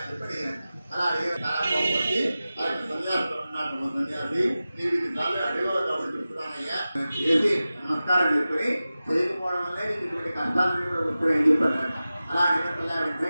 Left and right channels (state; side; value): inverted; both; correlation -0.95